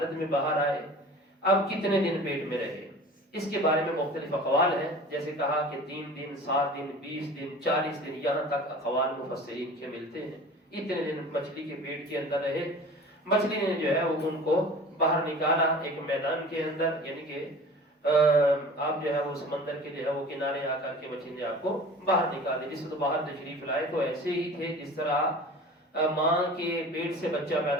میں باہر آئے، اب کتنے دن پیٹ میں رہے اس کے بارے میں مختلف اقوال ہیں، جیسے کہا کہ 3 دن 7 دن 20 دن 40 دن یہاں تک اقوال مفسرین کے ملتے ہیں۔ اتنے دن مچھلی کے پیٹ کے اندر رہے، مچھلی نے جو ہے وہ ان کو باہر نکالا ایک میدان کے اندر، یعنی کہ آپ جو ہے وہ سمندر کے جو ہے وہ کنارے آ کر کے مچھلی نے آپ کو باہر نکال دی۔ جس کو باہر تشریف لائے تو ایسے ہی تھے جس طرح ماں کے پیٹ سے بچہ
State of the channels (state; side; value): normal; both; correlation 0.41